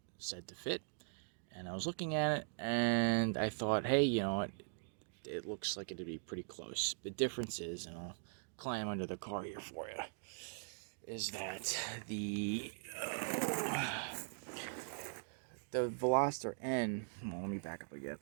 said to fit. And I was looking at it, and I thought, hey, you know what? It looks like it'd be pretty close. The difference is, and I'll climb under the car here for you, is that the Veloster N, well, let me back up again.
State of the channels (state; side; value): silent; left; digital silence